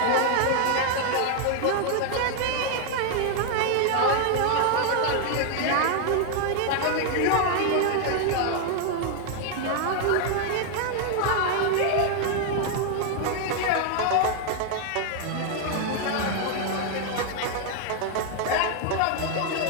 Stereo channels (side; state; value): both; different; correlation 0.00